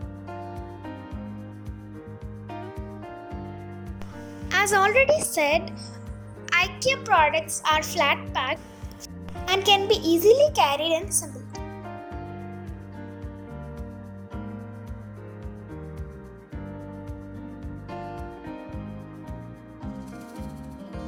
As already said, IKEA products are flat packed and can be easily carried and assembled.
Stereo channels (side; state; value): both; identical; correlation 1.00